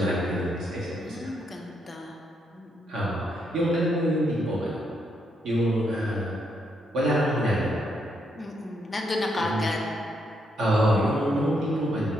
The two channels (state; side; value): normal; both; correlation 0.77